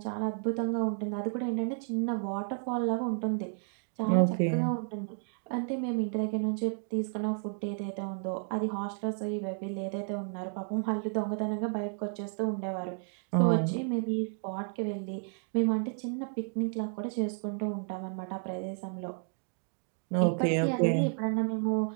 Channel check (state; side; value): silent; left; 56 dB below the other